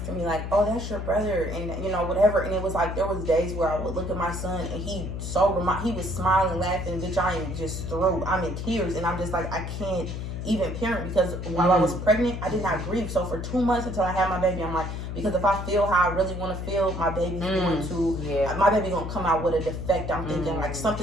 to me like, oh, that's your brother. And, you know, whatever. And it was like, there was days where I would look at my son and he was smiling, laughing. Bitch, I am just through. I'm in tears. And I'm just like, I can't even parent because while I was pregnant, I did not grieve. So for 2 months until I had my baby, I'm like, because if I feel how I really want to feel, my baby's going to, my baby going to come out with a defect. I'm thinking like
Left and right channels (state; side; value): noise; left; hum, 5 dB below the sound